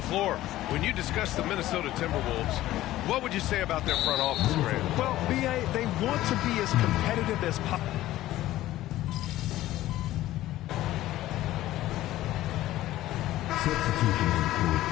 When you discuss the Minnesota Timberwolves, what would you say about their front office, Grant? Well, B.A., they want to be as competitive as possible.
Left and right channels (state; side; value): quieter; right; 15.1 dB